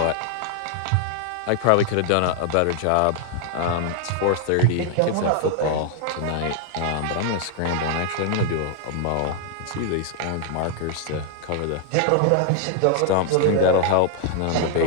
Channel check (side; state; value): both; different; correlation 0.00